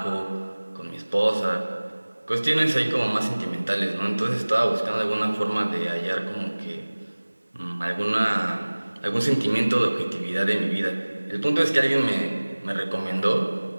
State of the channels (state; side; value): inverted; both; correlation -1.00